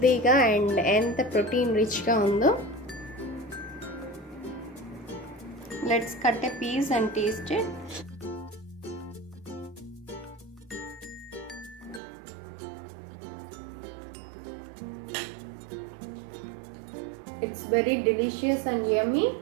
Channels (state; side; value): drops out; left; at 12.0 s